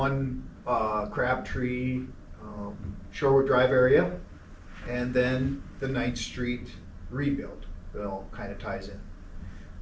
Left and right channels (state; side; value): identical; both; correlation 1.00